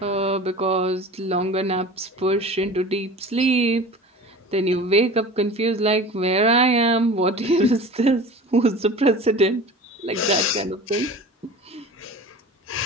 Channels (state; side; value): normal; both; correlation 0.38